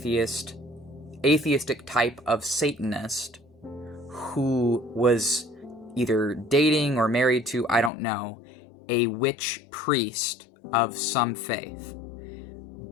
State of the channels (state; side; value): drops out; right; at 7.9 s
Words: type of satanist who was either dating or married to, I don't know, a witch priest of some faith.